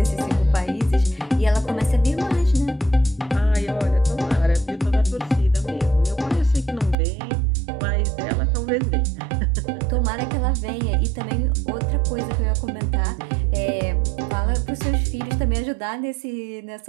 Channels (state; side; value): drops out; left; at 7.0 s